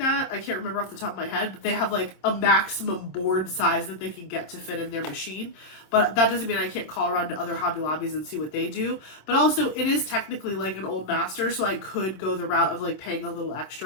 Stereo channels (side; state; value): right; late; 26 ms